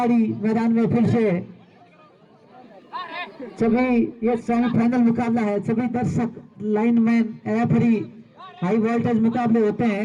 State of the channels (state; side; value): identical; both; correlation 1.00